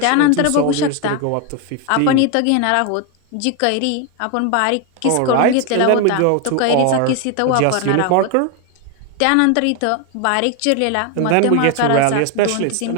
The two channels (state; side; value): different; both; correlation 0.01